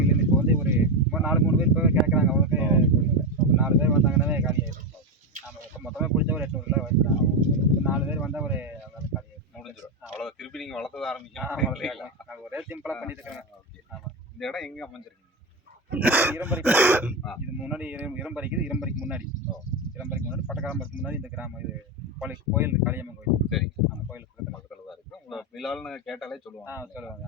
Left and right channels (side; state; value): both; normal; correlation 0.12